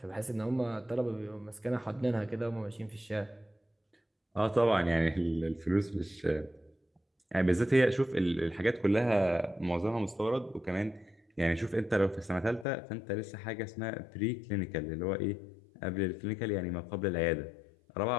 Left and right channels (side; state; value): right; drops out; at 12.7 s